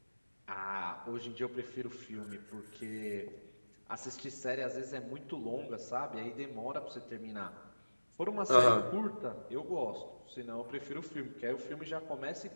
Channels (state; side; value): inverted; both; correlation -1.00